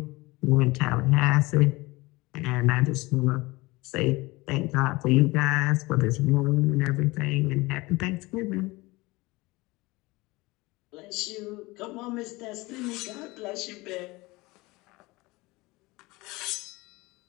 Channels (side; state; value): right; quieter; 22.3 dB